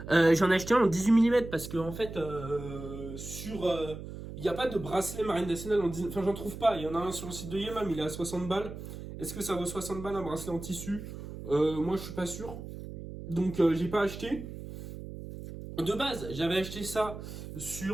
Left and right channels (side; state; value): right; noise; hum, 10 dB below the sound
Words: J'en ai acheté un en 18 mm parce que en fait il n'y a pas de bracelet Marine Nationale en 18. Enfin j'en trouve pas, il y en a un sur le site de Yema mais il est à 60 balles. Est-ce que ça vaut 60 balles un bracelet en tissu? Moi je suis pas sûr. Donc j'ai pas acheté. De base, j'avais acheté ça